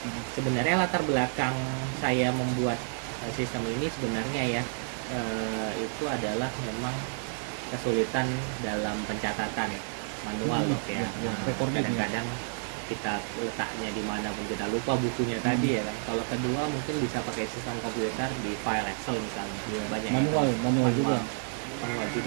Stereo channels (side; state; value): left; silent; 58 dB below the other